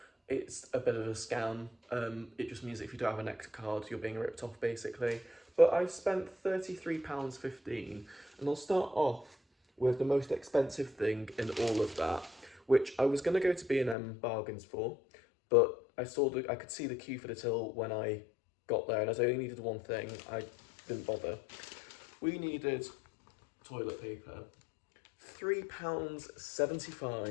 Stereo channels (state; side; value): drops out; right; at 14.0 s